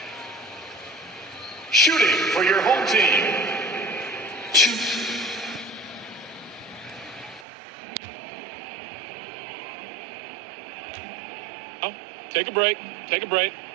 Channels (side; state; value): left; drops out; at 7.5 s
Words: Shooting for your home team. Oh, take a break. Take a break.